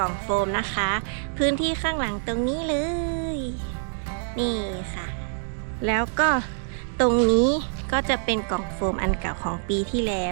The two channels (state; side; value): silent; left; digital silence